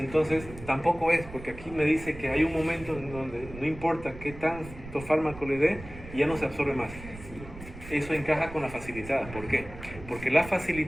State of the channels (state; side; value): noise; right; rumble, 14 dB below the sound